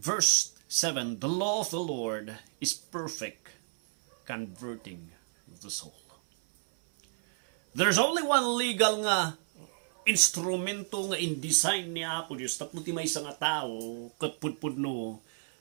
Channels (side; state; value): left; silent; 57 dB below the other